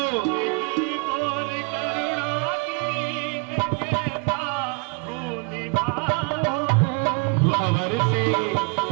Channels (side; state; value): left; quieter; 32.3 dB